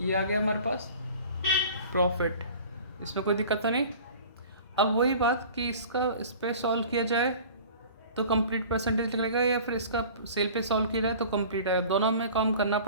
आ गया हमारे पास प्रॉफिट, इसमें कोई दिक्कत तो नहीं। अब वही बात कि इस पे सॉल्व किया जाए तो कंप्लीट परसेंटेज निकलेगा, या फिर इसका सेल पे सॉल्व किया जाए तो कंप्लीट आएगा। दोनों में काम करना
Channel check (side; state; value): both; inverted; correlation -0.43